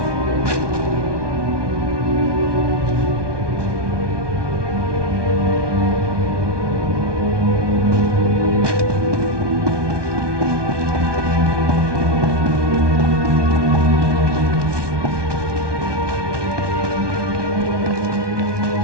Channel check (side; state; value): left; late; 1.2 ms